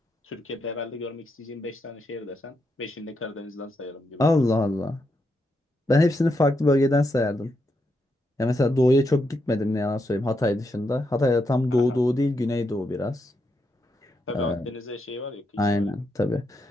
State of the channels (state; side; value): normal; both; correlation 0.82